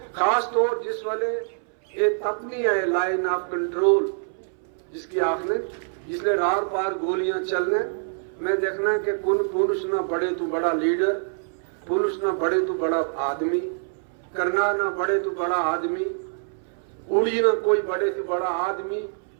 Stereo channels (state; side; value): silent; left; 62 dB below the other